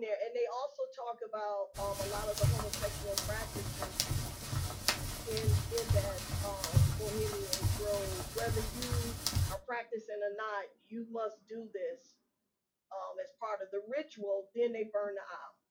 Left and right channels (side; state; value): both; identical; correlation 1.00